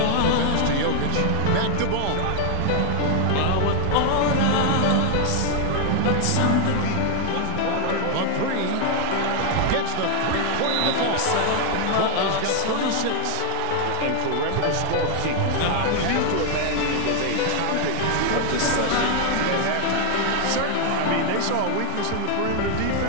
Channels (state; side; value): different; both; correlation 0.00